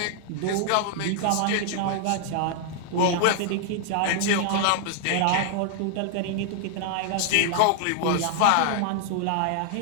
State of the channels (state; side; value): different; both; correlation 0.00